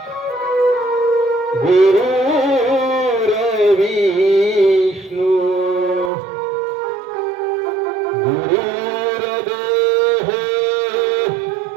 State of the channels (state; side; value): drops out; left; at 6.1 s